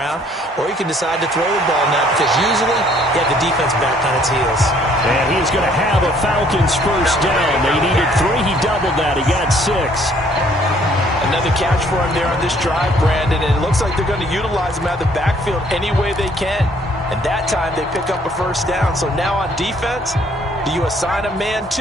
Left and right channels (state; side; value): normal; both; correlation 0.62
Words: or you can decide to throw the ball now because usually you have the defense back on its heels. And he's going to have a Falcons 1st down. They needed 3. He doubled that. He got 6. Another catch for him there on this drive, Brandon, and it looks like they're going to utilize him out of the backfield any way they can. And that time they pick up a 1st down. So now on defense, do you assign a man